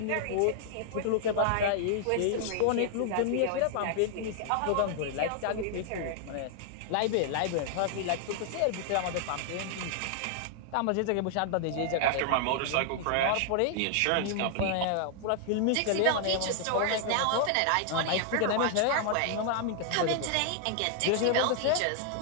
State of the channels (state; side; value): different; both; correlation 0.00